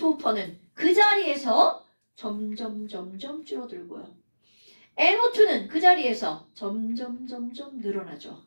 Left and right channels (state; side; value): inverted; both; correlation -1.00